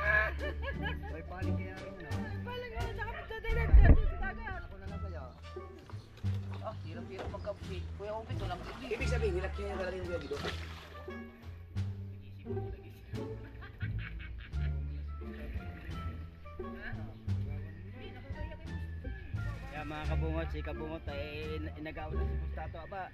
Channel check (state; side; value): identical; both; correlation 1.00